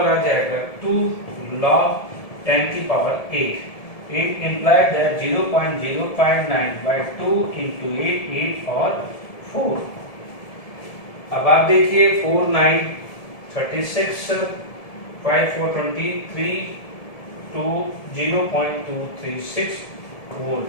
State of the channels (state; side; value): late; right; 1.7 ms